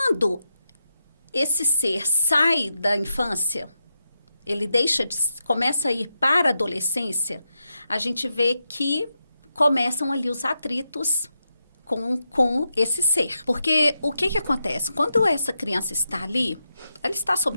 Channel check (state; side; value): inverted; both; correlation -0.86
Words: esse ser sai da infância, ele começa a ir para a adolescência, a gente vê que começam ali os atritos com esse ser. Porque o que acontece? Quando essa criança está ali, ela está